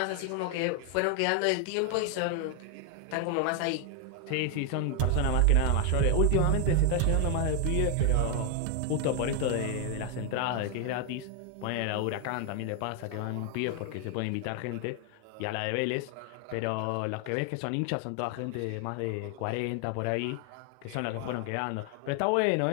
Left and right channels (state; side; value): different; both; correlation 0.01